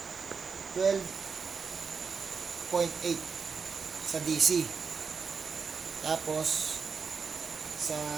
12.8 sa DC. Tapos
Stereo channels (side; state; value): left; quieter; 5.5 dB